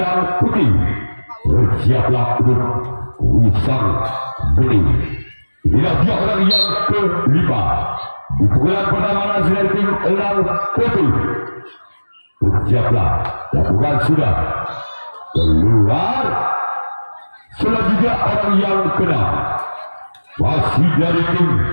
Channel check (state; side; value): inverted; both; correlation -1.00